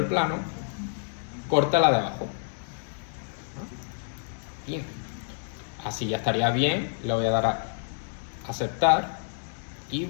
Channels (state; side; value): silent; right; digital silence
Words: plano, corta la de abajo. Bien. Así ya estaría bien, le voy a dar a aceptar y